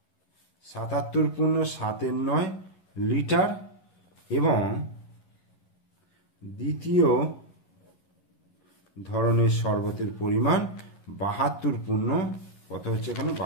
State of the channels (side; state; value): right; late; 11 ms